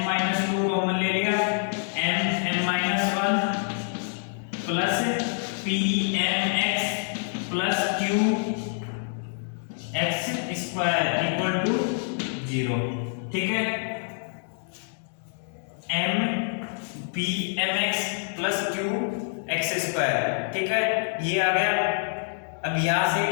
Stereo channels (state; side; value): silent; right; digital silence